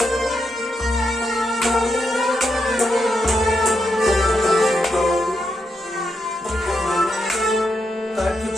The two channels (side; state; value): both; normal; correlation 0.83